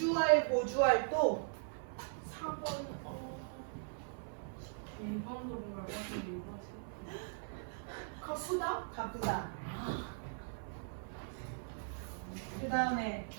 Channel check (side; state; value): left; silent; 51 dB below the other